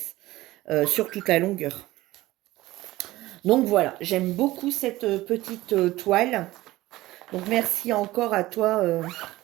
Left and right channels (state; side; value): quieter; left; 17.5 dB